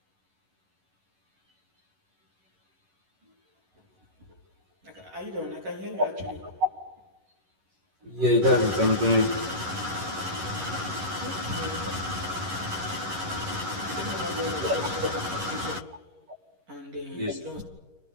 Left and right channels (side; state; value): left; late; 11 ms